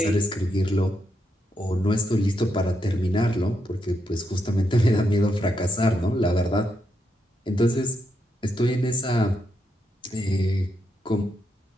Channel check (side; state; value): both; normal; correlation 0.81